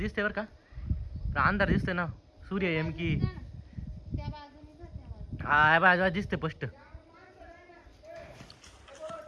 बरं का. अंधार दिसतंय ना. सूर्य एम की हा बाजूला दिसते स्पष्ट.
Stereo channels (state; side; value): identical; both; correlation 1.00